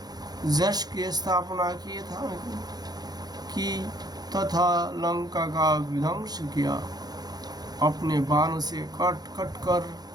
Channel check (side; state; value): left; late; 0.19 ms